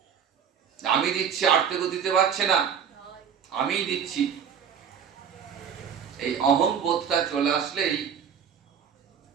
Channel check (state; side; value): quieter; left; 7.6 dB